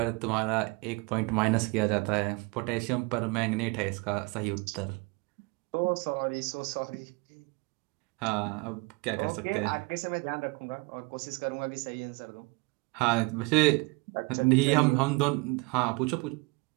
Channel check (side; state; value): left; quieter; 27.0 dB